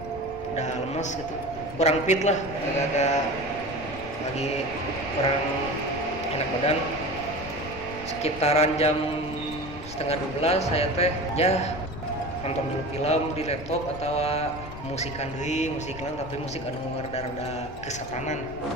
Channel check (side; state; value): left; noise; rumble, 13 dB below the sound